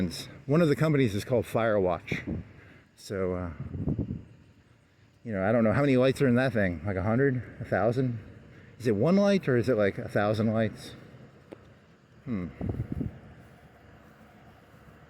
One of the companies is called Firewatch. So I don't know how many lights are in that thing. Like 100, 1,000. Is it 1 light or is it like 1,000 lights? Let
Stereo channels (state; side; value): identical; both; correlation 1.00